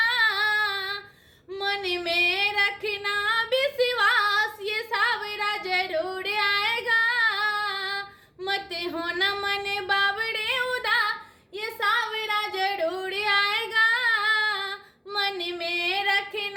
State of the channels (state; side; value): identical; both; correlation 1.00